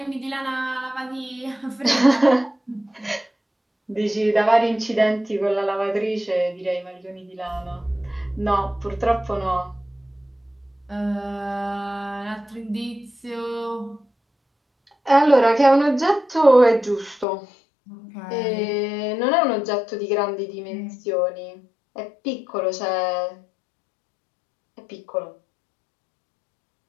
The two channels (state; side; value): drops out; right; at 17.2 s